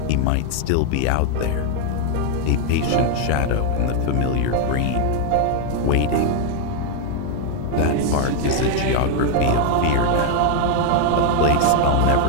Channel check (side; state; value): both; different; correlation 0.00